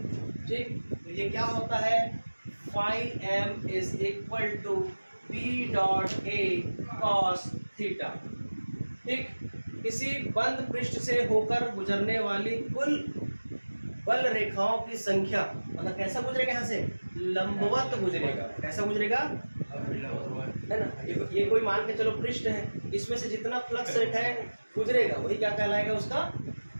ठीक। तो ये क्या होता है, phi M is equal to B dot A cos theta, ठीक। किसी बंद पृष्ठ से होकर गुजरने वाली कुल बल रेखाओं की संख्या, मतलब कैसा गुजरेगा, यहाँ से लंबवत गुजरेगा, कैसा गुजरेगा, है ना। ये कोई मान के चलो पृष्ठ है, इसमें से जितना फ्लक्स रेखाएं गुजरेगा वही क्या कहलाएगा, उसका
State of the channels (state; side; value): inverted; both; correlation -1.00